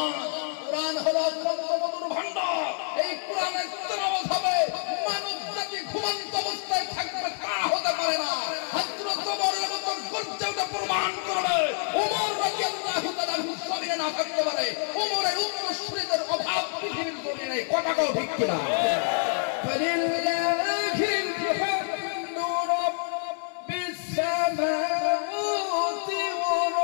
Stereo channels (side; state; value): right; silent; 60 dB below the other